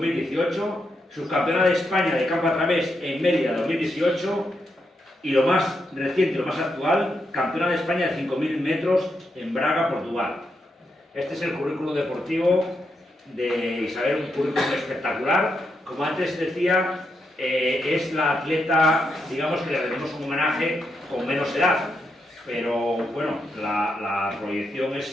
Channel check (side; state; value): both; normal; correlation 0.82